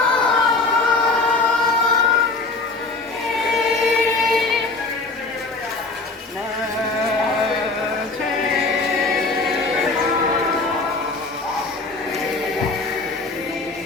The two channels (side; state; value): right; quieter; 3.6 dB